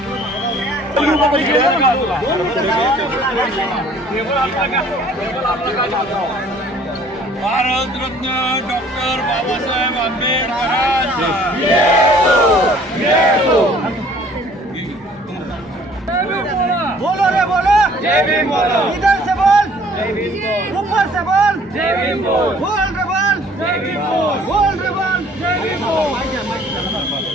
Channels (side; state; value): both; normal; correlation 0.55